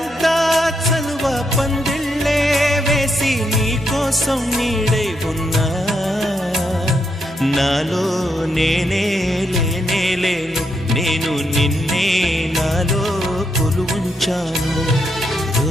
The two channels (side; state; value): both; normal; correlation 0.80